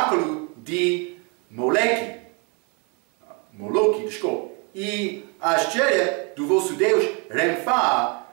de Moloque, e a estrela do vosso Deus Renfá,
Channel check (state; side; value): quieter; left; 33.5 dB